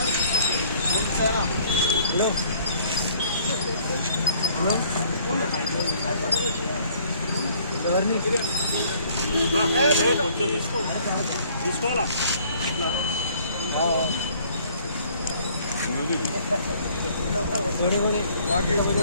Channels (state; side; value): inverted; both; correlation -0.59